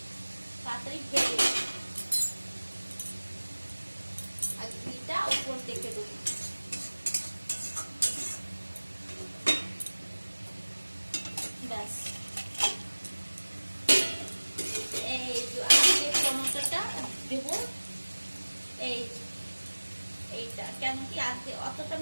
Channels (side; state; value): both; inverted; correlation -1.00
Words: তাড়াতাড়ি ভেজে, আর ঘিটা উপর থেকে দেবো। ব্যাস, এই যে আজকে টমেটোটা দেবো। এইটা কেন কি আজকে অতটা